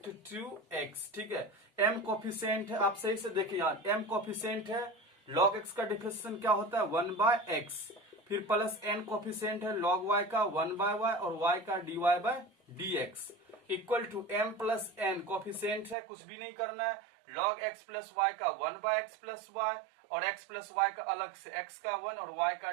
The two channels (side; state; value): left; drops out; at 16.0 s